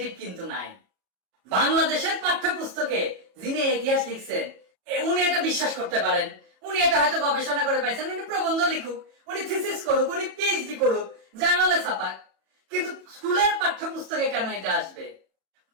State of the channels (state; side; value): late; left; 33 ms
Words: কিন্তু নাই। বাংলাদেশের পাঠ্যপুস্তকে যিনি ইতিহাস লিখছেন উনি এটা বিশ্বাস করতে পারেন, উনি এটা হয়তো গবেষণা করে পাইছেন, উনি প্রবন্ধ লিখুক, উনি থিসিস করুক, উনি পিএইচডি করুক, জার্নালে ছাপাক, কিন্তু স্কুলের পাঠ্যপুস্তকে কেন এটা আসবে?